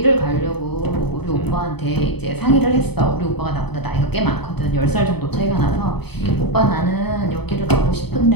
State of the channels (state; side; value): late; right; 0.97 ms